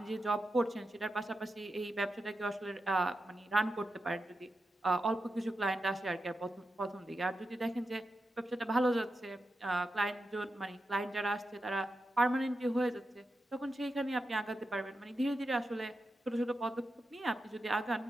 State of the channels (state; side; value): normal; both; correlation 0.89